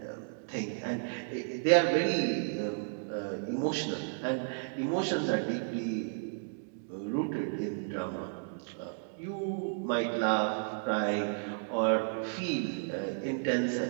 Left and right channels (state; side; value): silent; left; digital silence